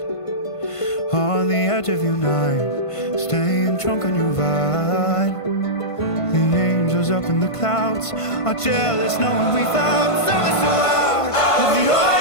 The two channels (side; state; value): right; late; 1.5 ms